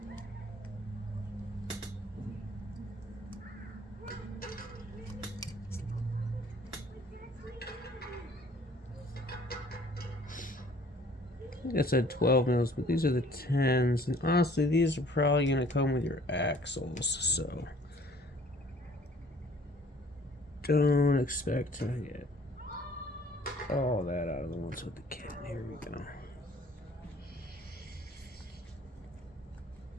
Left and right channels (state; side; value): normal; both; correlation 0.55